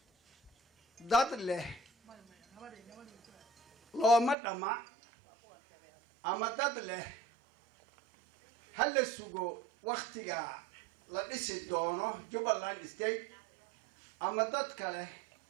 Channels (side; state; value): left; drops out; at 4.4 s